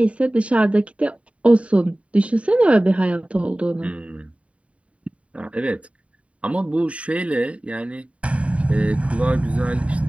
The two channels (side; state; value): left; late; 0.064 ms